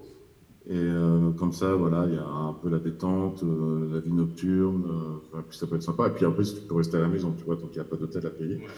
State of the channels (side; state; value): both; identical; correlation 1.00